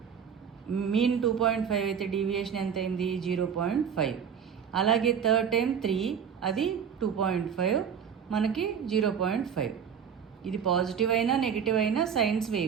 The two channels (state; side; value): quieter; left; 7.6 dB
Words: మీన్ 2.5 అయితే డీవియేషన్ ఎంత అయింది, 0.5. అలాగే థర్డ్ టైం 3 అది 2.5 మనకి 0.5. ఇది పాజిటివ్ అయినా నెగిటివ్ అయినా సైన్స్